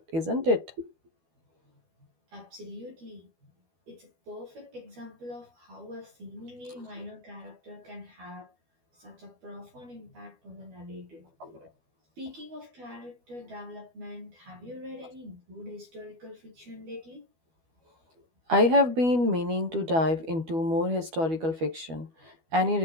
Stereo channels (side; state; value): left; late; 12 ms